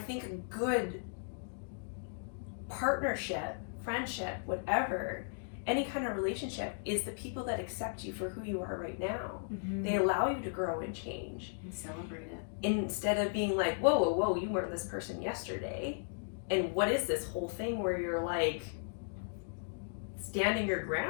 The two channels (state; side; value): silent; right; digital silence